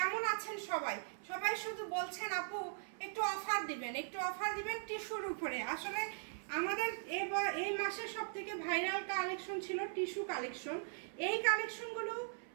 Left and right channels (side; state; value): left; silent; 51 dB below the other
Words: আছেন সবাই? সবাই শুধু বলছেন আপু একটু অফার দিবেন, একটু অফার দিবেন টিস্যুর উপরে। আসলে আমাদের এই মাসে সবথেকে ভাইরাল কালেকশন ছিল টিস্যু কালেকশন। এই কালেকশনগুলো